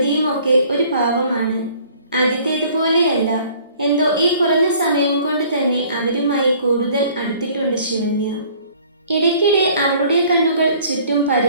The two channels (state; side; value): inverted; both; correlation -0.55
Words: ഒക്കെ ഒരു പാവമാണ്. ആദ്യത്തേതുപോലെയല്ല, എന്തോ ഈ കുറഞ്ഞ സമയം കൊണ്ട് തന്നെ അവരുമായി കൂടുതൽ അടുത്തിട്ടുണ്ട് ശിവന്യ. ഇടയ്ക്കിടെ അവളുടെ കണ്ണുകൾ ചുറ്റും